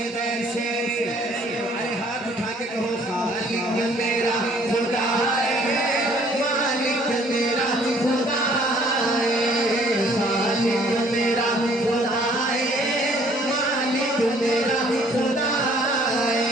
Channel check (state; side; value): normal; both; correlation 0.59